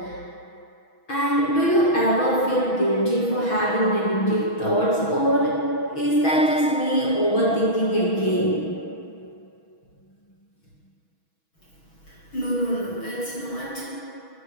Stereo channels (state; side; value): late; right; 6.2 ms